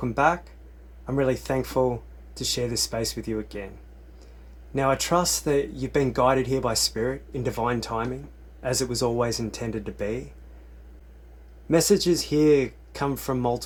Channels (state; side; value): identical; both; correlation 1.00